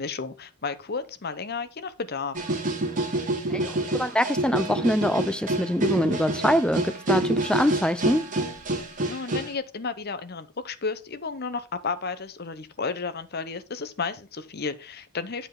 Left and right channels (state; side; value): normal; both; correlation 0.49